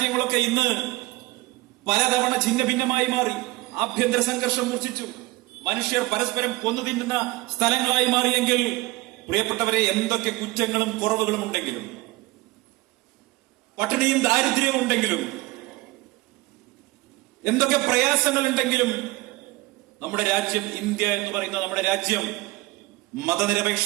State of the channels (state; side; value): quieter; left; 20.5 dB